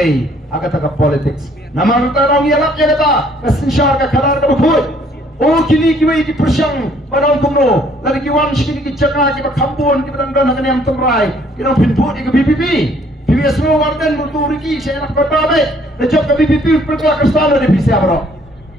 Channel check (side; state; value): both; normal; correlation 0.62